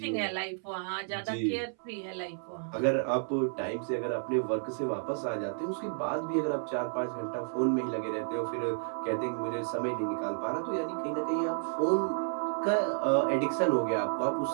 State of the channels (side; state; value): left; silent; 57 dB below the other